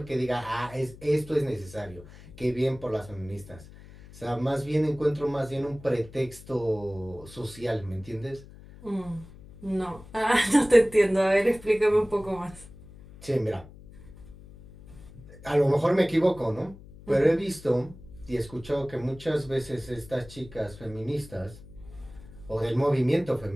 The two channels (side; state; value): left; noise; hum, 19 dB below the sound